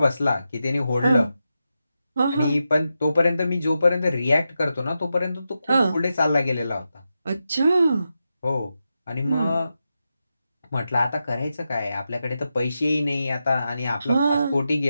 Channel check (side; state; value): both; inverted; correlation -0.89